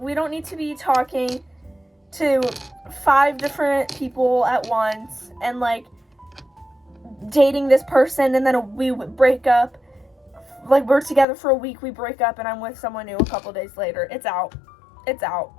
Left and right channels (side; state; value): right; drops out; at 11.2 s